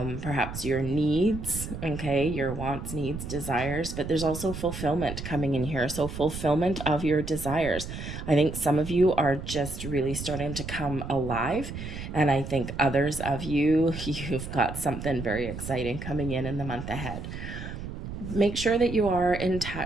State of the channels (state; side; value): noise; right; rumble, 8 dB below the sound